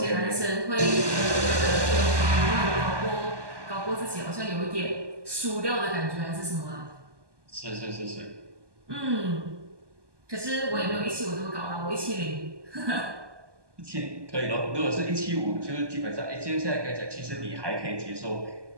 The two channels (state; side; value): late; left; 1.2 ms